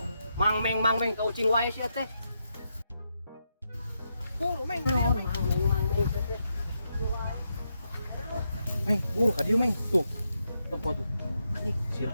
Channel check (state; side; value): inverted; both; correlation -0.83